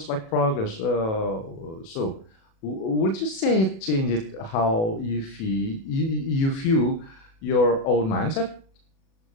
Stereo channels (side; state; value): right; late; 37 ms